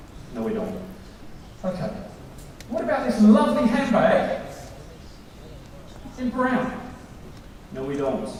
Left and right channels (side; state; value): both; identical; correlation 1.00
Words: No, we don't. Okay. What about this lovely handbag in brown? No, we don't.